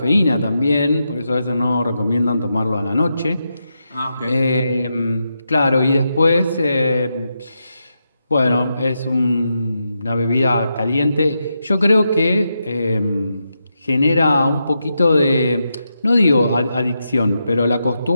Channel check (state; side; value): inverted; both; correlation -0.86